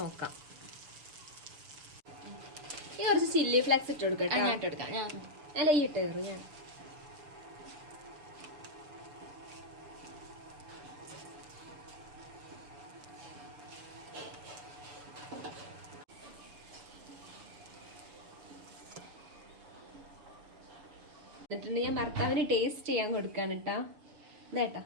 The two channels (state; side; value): late; left; 6.6 ms